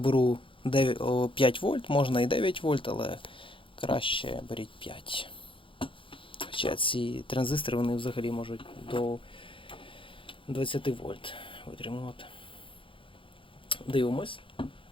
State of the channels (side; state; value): right; late; 0.25 ms